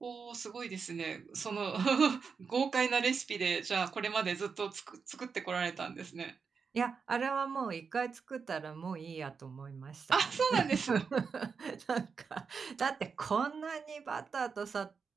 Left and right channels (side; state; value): left; quieter; 5.6 dB